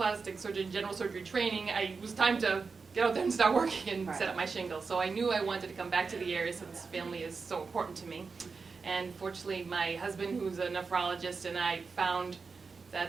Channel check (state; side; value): quieter; left; 4.8 dB